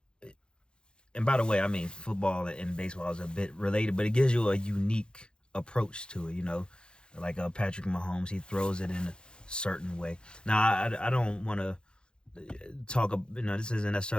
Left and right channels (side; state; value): right; late; 0.050 ms